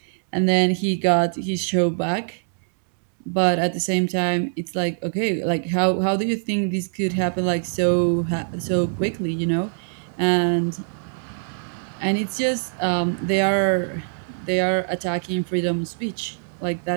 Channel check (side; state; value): left; silent; 63 dB below the other